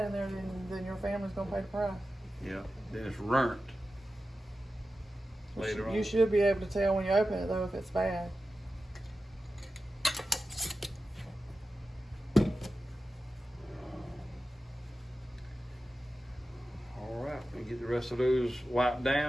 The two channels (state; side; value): normal; both; correlation 0.93